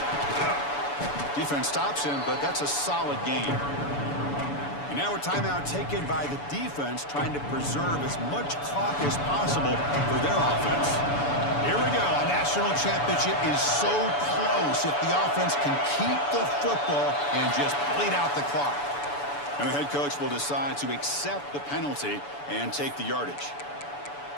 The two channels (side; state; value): right; late; 7.0 ms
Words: Defense stops him, but that's a solid gain. And now a timeout taken by the defense, trying to preserve as much clock as possible for their offense. Here we go. A national championship is so close if the offense can keep the football and just bleed out the clock. And the head coach will decide to accept the penalty and take the yardage.